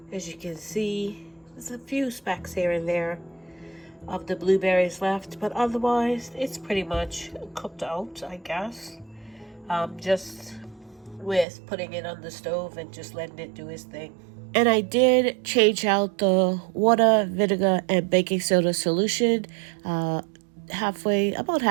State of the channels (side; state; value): left; drops out; at 11.5 s